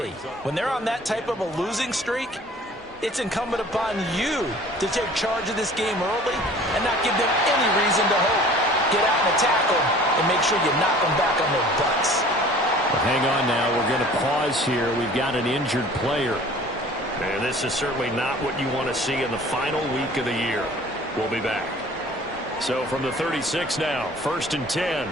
When they're on that type of a losing streak, it's incumbent upon you to take charge of this game early and not give them any reason to hope. Get out and attack them and make sure you knock them back on their butts. Well, hang on now. We're going to pause here. We've got an injured player. And this is certainly not what you want to see in the final week of the year. We'll be back. So from the 36 now, 1st and 10.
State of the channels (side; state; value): both; normal; correlation 0.48